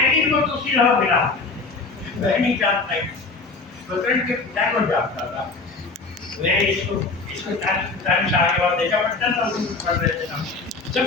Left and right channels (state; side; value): quieter; right; 3.9 dB